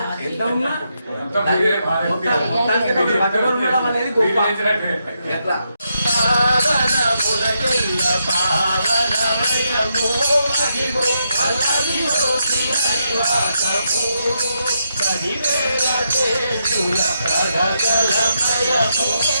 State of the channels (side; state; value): both; inverted; correlation -0.81